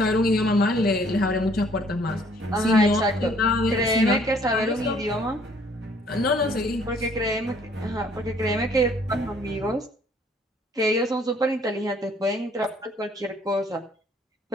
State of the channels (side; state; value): both; normal; correlation 0.61